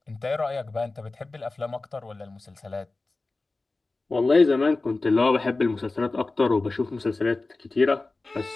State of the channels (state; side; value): quieter; right; 3.4 dB